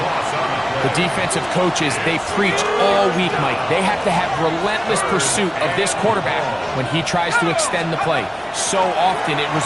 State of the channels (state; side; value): identical; both; correlation 1.00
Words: The defensive coaches, they preached all week, Mike. They have to have relentless pursuit of this quarterback when he tries to extend the play. So often it